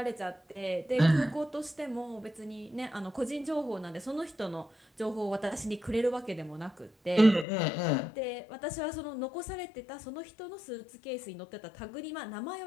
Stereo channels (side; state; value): right; drops out; at 7.5 s